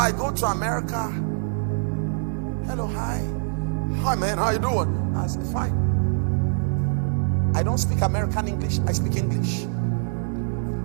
go to America. Hello, hi. Hi man, how you doing? I say, fine. I don't speak American English, I speak English.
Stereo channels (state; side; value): silent; left; digital silence